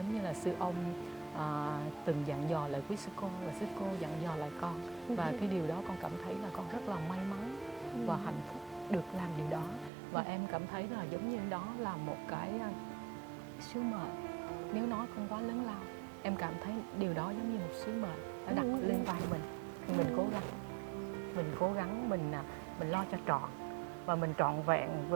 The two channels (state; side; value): drops out; left; at 9.9 s